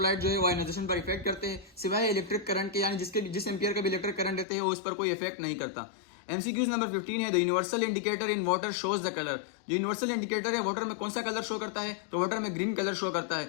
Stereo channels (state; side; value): drops out; right; at 4.5 s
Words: जो है वो आयोनाइजेशन पर इफेक्ट करते हैं, सिवाय इलेक्ट्रिक करंट के, यानी जिस एम्पियर का भी इलेक्ट्रिक करंट रहते हैं वो उस पर कोई इफेक्ट नहीं करता। एमसीक्यूज नंबर 15 है the universal indicator in water shows the colour. जो यूनिवर्सल इंडिकेटर है वाटर में कौन सा कलर शो करता है, तो वाटर में ग्रीन कलर शो करता